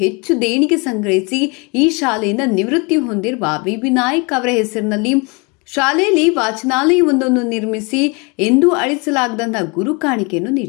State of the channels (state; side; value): quieter; right; 29.9 dB